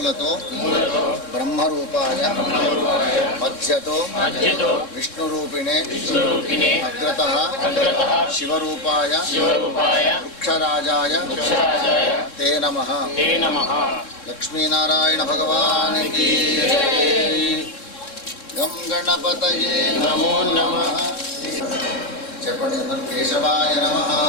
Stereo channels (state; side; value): late; right; 3.7 ms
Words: బ్రహ్మరూపాయ మధ్యతో విష్ణురూపిణే అగ్రతః శివరూపాయ వృక్షరాజాయ తే నమః లక్ష్మీనారాయణ భగవానికి గం గణపతయే నమో నమః చెప్పండి అందరూ కేశవాయ నమః